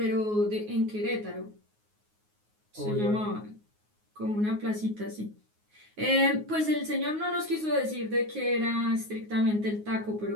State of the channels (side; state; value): left; late; 9.5 ms